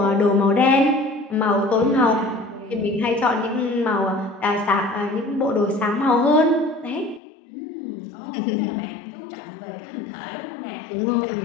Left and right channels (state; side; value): drops out; right; at 7.2 s